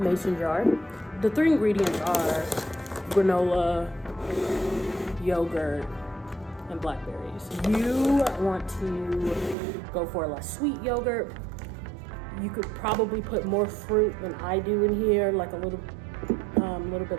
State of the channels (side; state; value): left; drops out; at 9.6 s